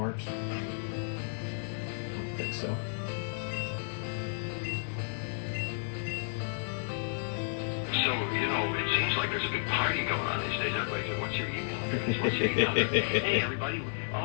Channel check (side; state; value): right; silent; digital silence